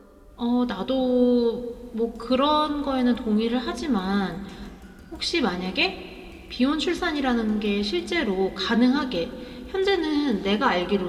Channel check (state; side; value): identical; both; correlation 1.00